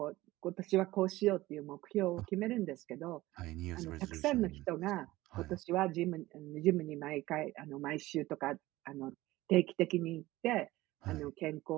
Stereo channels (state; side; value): quieter; left; 17.9 dB